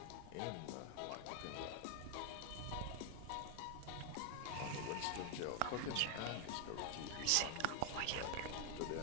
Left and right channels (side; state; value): both; different; correlation 0.00